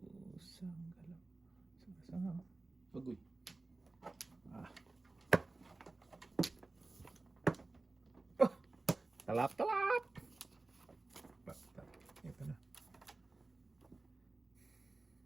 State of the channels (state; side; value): quieter; left; 3.2 dB